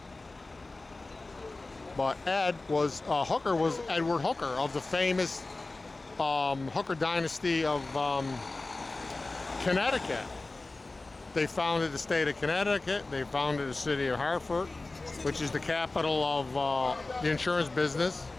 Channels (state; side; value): quieter; right; 3.2 dB